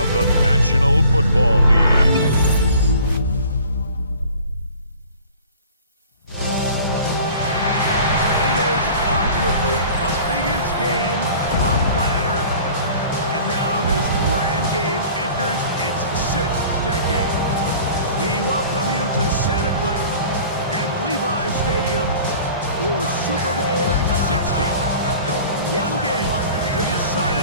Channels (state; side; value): inverted; both; correlation -0.47